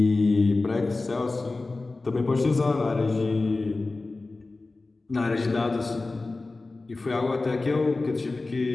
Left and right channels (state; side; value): quieter; right; 3.4 dB